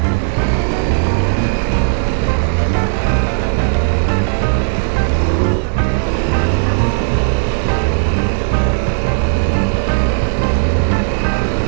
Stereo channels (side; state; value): left; silent; 64 dB below the other